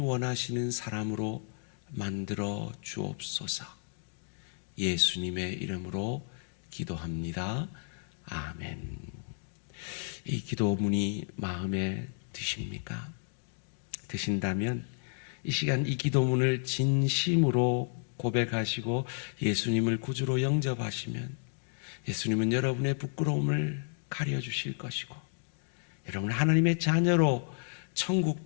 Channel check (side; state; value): right; silent; digital silence